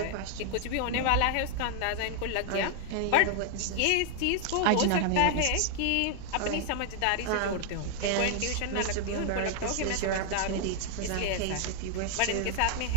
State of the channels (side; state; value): both; different; correlation 0.00